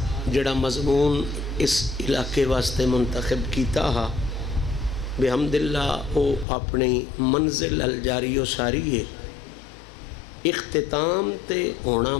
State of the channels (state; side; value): drops out; right; at 6.5 s